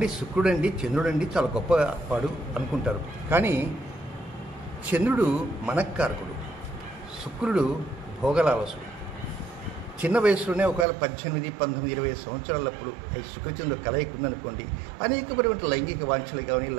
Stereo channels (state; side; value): drops out; left; at 10.9 s